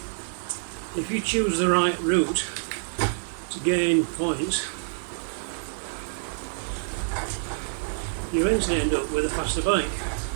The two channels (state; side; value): silent; left; digital silence